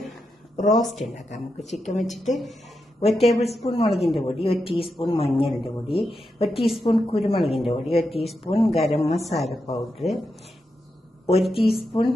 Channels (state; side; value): normal; both; correlation 0.86